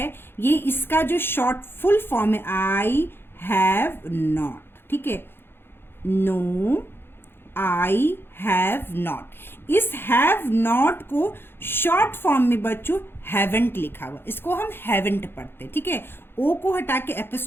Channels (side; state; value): right; late; 0.11 ms